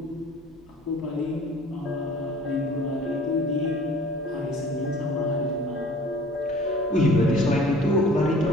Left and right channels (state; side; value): normal; both; correlation 0.48